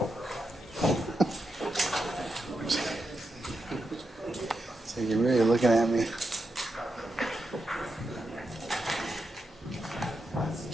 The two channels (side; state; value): both; normal; correlation 0.86